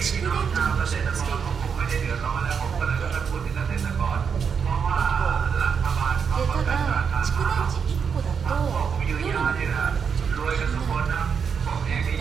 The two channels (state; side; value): quieter; left; 6.5 dB